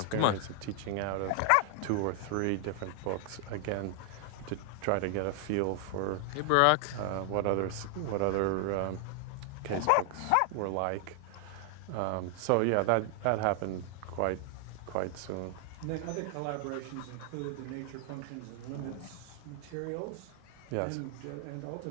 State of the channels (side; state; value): both; different; correlation 0.00